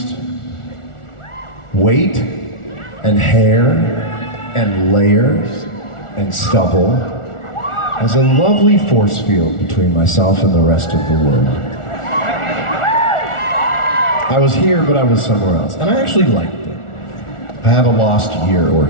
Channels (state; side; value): late; right; 1.4 ms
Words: weight and hair and layers and stubble as a lovely force field between myself and the rest of the world. I was here, but I was somewhere else, and I actually liked it. I have a lost year or